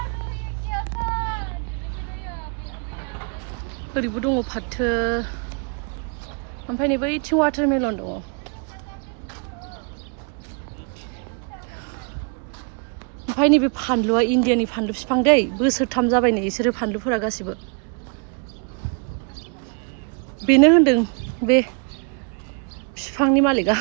ओरैबो दङ फाथो ओमफ्राय नै बैथिं वाटारमेलन दङ ओमफ्राय नैबे फानलुआ इण्डियानि फानलु बिफां दै बोसोरथाम जाबाय नै बिसोरो फानलुफोरा गासिबो बेनो होनदों बे बिफांनि मालिकआ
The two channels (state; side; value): quieter; left; 38.2 dB